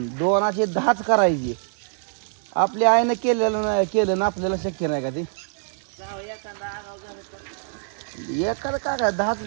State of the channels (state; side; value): silent; left; digital silence